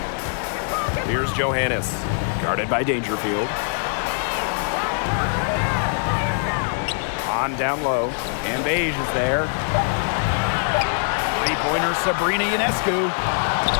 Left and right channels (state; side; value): silent; right; digital silence